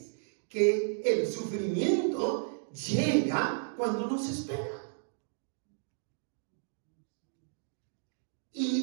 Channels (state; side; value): silent; left; digital silence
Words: que el sufrimiento llega cuando no se espera.